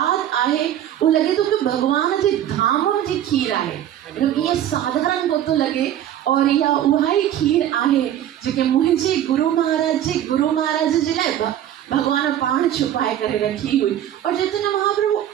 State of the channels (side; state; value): left; quieter; 11.3 dB